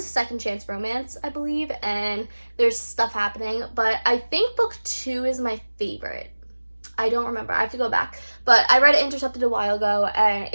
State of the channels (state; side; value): inverted; both; correlation -1.00